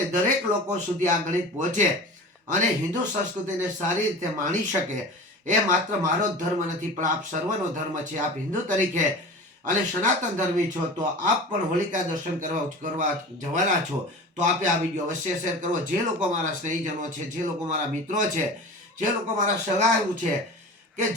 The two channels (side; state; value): both; normal; correlation 0.36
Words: દરેક લોકો સુધી આ ગણિત પહોંચે અને હિન્દુ સંસ્કૃતિને સારી રીતે માણી શકે એ માત્ર મારો જ ધર્મ નથી પણ આપ સર્વનો ધર્મ છે. આપ હિન્દુ તરીકે અને સનાતન ધર્મી છો તો આપ પણ હોલિકા દર્શન કરવા જવાના છો. તો આપે આ વિડીયો અવશ્ય શેર કરવો. જે લોકો મારા સ્નેહીજનો છે, જે લોકો મારા મિત્રો છે, જે લોકો મારા સગાઓ છે, કે